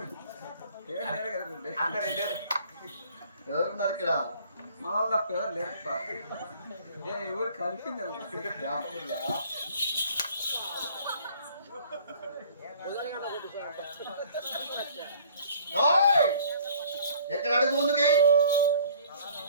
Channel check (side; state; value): both; inverted; correlation -0.54